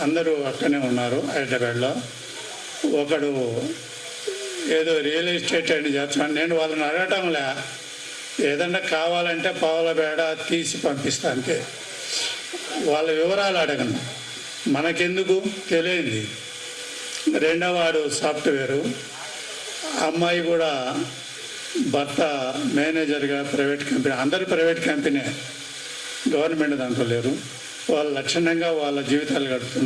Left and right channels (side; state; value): both; identical; correlation 1.00